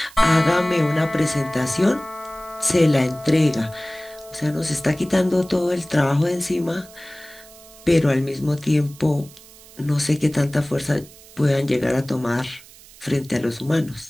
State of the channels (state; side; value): noise; right; hiss, 22 dB below the sound